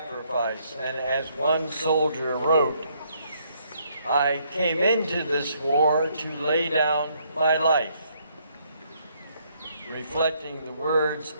and as one soldier wrote, "I came into this war to lay down my life," reflecting the words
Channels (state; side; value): inverted; both; correlation -0.70